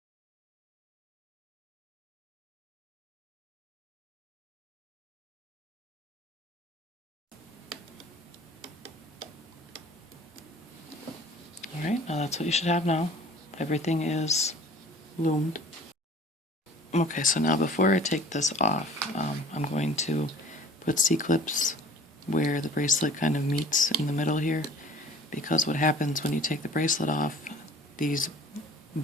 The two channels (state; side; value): normal; both; correlation 0.48